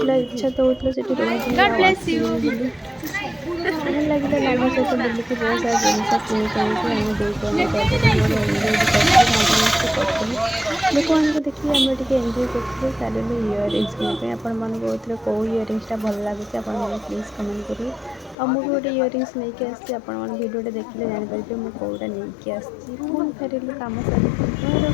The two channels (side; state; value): right; drops out; at 18.4 s